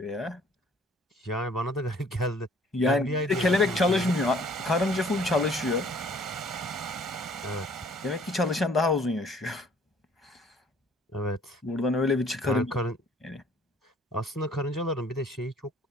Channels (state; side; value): normal; both; correlation 0.57